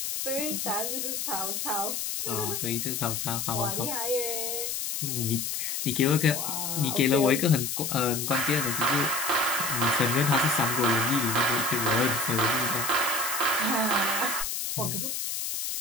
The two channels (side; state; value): left; noise; hiss, 3 dB below the sound